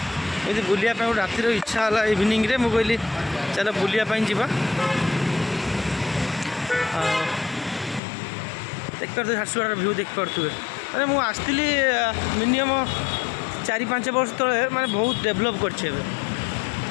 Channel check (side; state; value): right; drops out; at 8.0 s